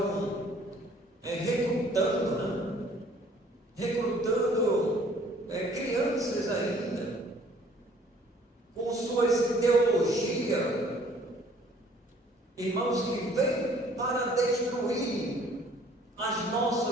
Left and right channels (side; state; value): both; normal; correlation 0.57